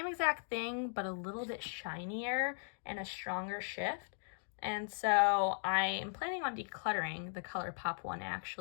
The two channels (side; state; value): right; silent; digital silence